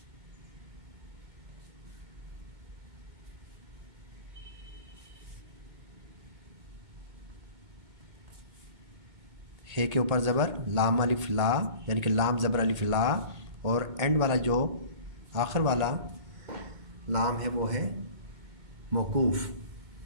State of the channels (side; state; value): left; late; 2.2 ms